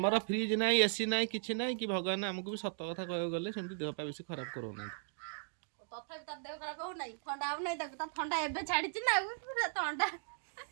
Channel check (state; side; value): silent; left; digital silence